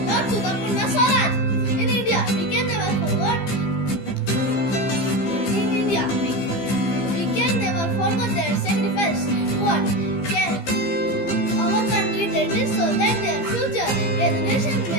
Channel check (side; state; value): right; late; 15 ms